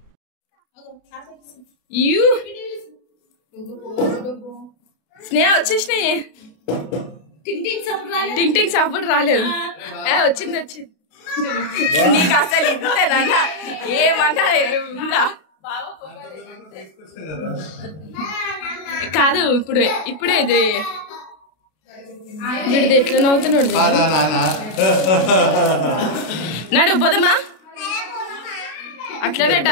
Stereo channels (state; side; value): late; right; 32 ms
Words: Sneha వచ్చేసినాయి టింగ్ టింగ్ సప్పుడు రాలేదు వచ్చింది వచ్చింది నీకు అసలు ఇంతేనా ఏమన్నా ఉందా కాదు ఇప్పుడే ఇది వీడిది ఎట్లా నవ్వుతున్నాడు నడు పోదమ్మా అట్లనే